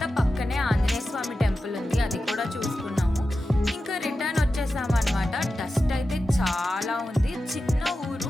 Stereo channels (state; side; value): normal; both; correlation 0.92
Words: పక్కనే ఆంజనేయ స్వామి టెంపుల్ ఉంది, అది కూడా చూసుకున్నాము. ఇంకా రిటర్న్ వచ్చేసాము అనమాట. డస్ట్ అయితే చాలా ఉంది. చిన్న